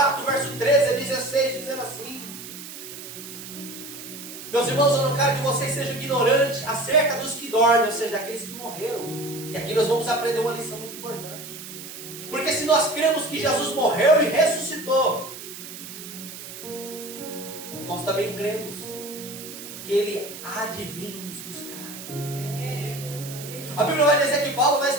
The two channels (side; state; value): right; noise; hiss, 12 dB below the sound